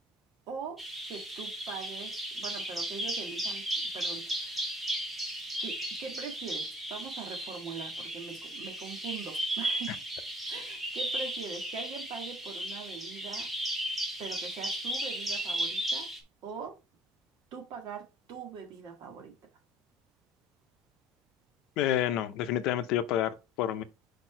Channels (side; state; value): both; normal; correlation 0.48